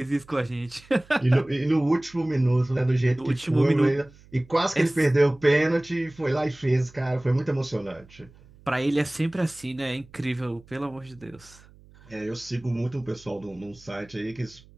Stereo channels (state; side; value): noise; right; hum, 25 dB below the sound